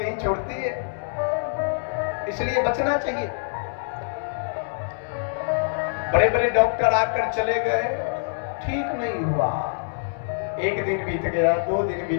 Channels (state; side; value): silent; right; 61 dB below the other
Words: ही छोड़ती है, इसलिए बचना चाहिए। बड़े बड़े डॉक्टर आकर चले गए, ठीक नहीं हुआ। एक दिन बीत गया, 2 दिन